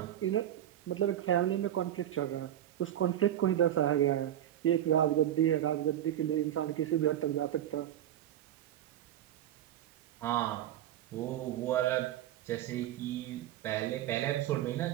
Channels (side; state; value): left; quieter; 11.7 dB